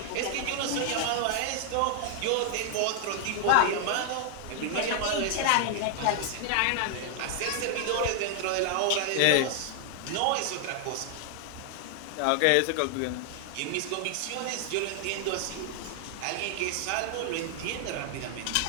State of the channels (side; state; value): both; different; correlation 0.00